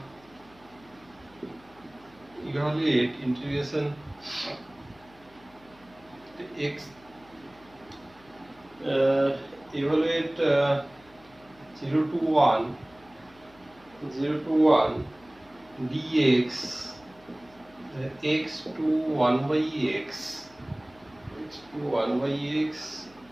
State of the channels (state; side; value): noise; left; hum, 27 dB below the sound